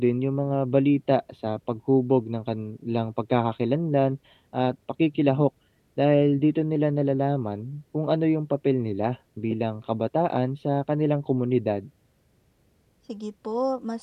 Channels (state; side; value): identical; both; correlation 1.00